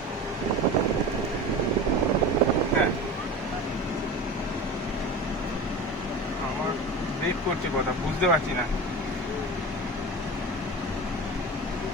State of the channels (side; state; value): both; normal; correlation 0.31